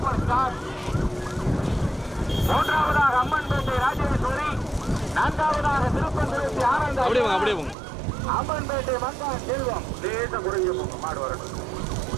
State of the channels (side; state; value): left; drops out; at 7.8 s